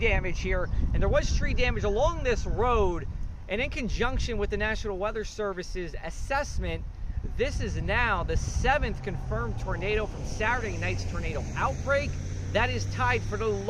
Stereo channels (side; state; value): both; identical; correlation 1.00